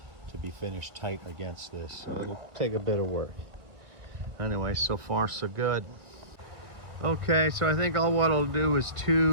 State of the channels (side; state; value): left; late; 1.8 ms